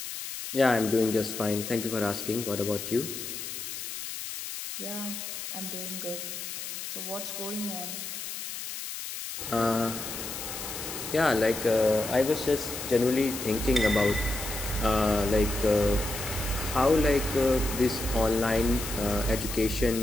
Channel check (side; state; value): left; noise; hiss, 7 dB below the sound